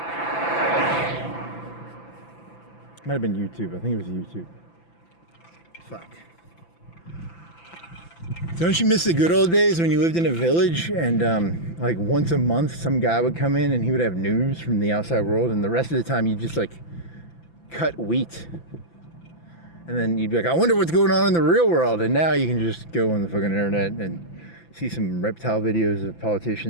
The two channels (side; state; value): right; late; 5.9 ms